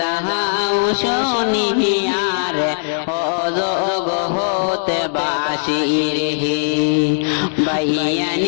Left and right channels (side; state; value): right; silent; digital silence